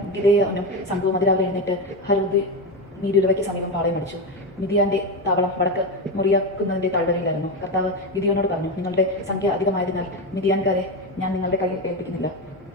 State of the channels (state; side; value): noise; left; hum, 26 dB below the sound